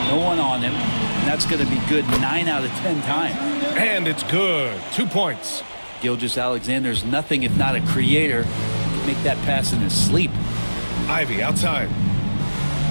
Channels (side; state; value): both; inverted; correlation -1.00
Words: No one on him. And that's going to be good 9 out of 10 times. And it's good. 2 points. Gilgeous-Alexander's nothing if not a creator. He can make that pass in his sleep. Ivy outside.